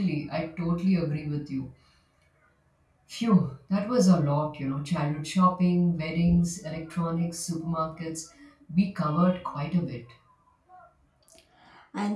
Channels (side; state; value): both; identical; correlation 1.00